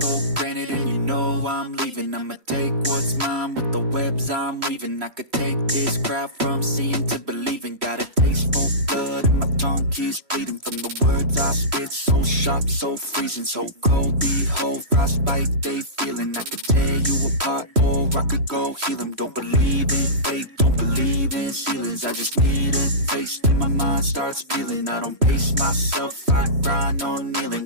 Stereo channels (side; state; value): left; late; 3.1 ms